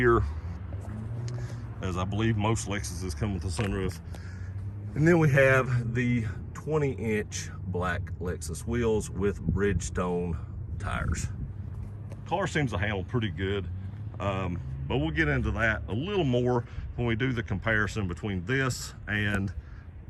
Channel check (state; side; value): identical; both; correlation 1.00